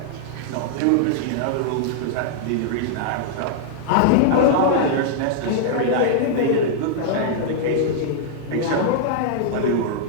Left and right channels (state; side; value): different; both; correlation -0.01